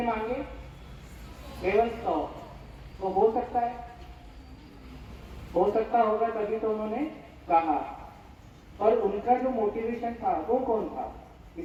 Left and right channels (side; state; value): both; identical; correlation 1.00